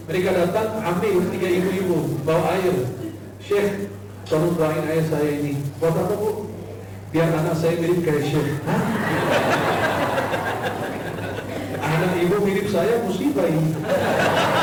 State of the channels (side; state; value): both; identical; correlation 1.00